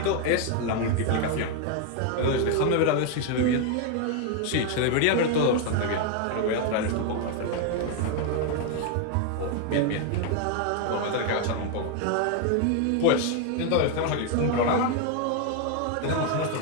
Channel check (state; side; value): different; both; correlation 0.01